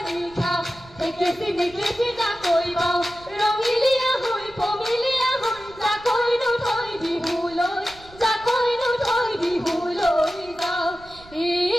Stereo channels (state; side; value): noise; right; rumble, 23 dB below the sound